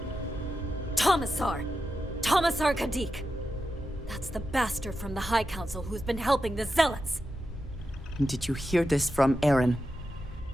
Tomasar! Tomasar Kadik! That's the bastard from the High Council who's been helping the Zealots! Did you hear this from Aaron?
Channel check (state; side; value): normal; both; correlation 0.89